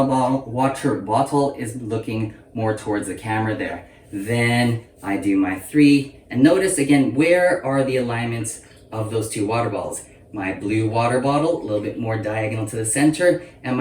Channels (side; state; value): both; identical; correlation 1.00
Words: bottle is looking more towards the camera there. Then I do my 3, and notice again, where are the alignments of those 2 water balls? My blue water bottle a little bit more diagonal to the center, and